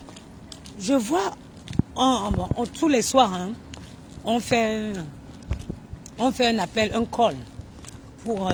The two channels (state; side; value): identical; both; correlation 1.00